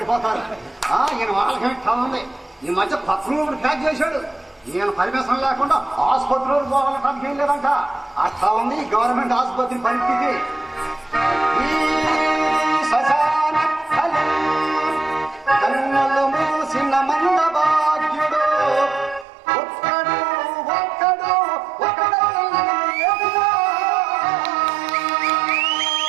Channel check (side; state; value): left; drops out; at 19.2 s